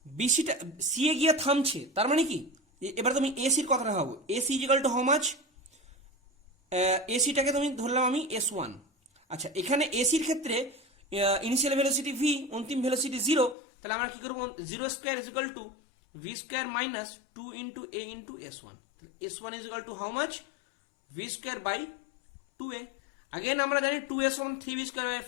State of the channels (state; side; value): drops out; right; at 13.6 s